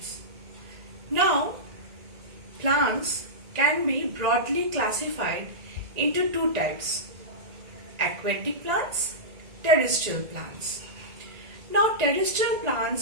Now, plants can be broadly classified into two types: aquatic plants, terrestrial plants. Now, terrestrial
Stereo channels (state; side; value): late; left; 1.9 ms